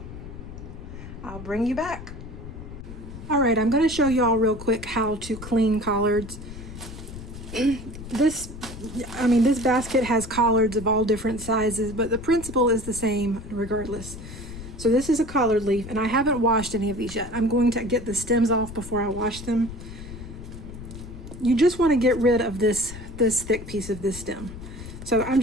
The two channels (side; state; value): left; noise; rumble, 12 dB below the sound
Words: I'll bring you back. All right, I'm going to show y'all real quick how to clean collards. This basket has collards of all different sizes, but the principle is the same regardless. So this is a collard leaf, and I haven't washed any of these yet. I'm going to get the stems off before I wash them. You just want to get rid of this thick piece of this stem. So I'm